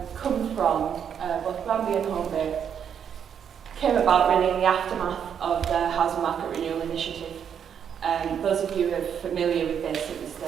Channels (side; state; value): left; quieter; 8.1 dB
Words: from, both Granby and Holbait, came about really in the aftermath of the Housing Market Renewal Initiative. Those of you who are familiar with this, it was